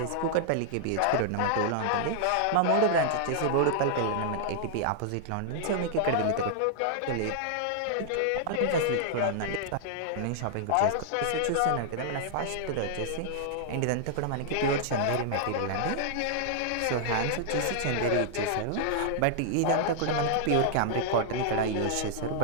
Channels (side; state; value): both; different; correlation -0.01